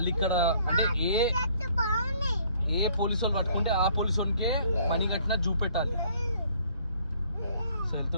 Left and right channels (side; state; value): both; inverted; correlation -0.61